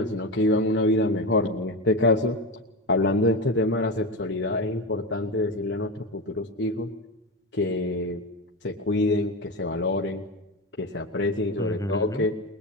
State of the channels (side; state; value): both; normal; correlation 0.20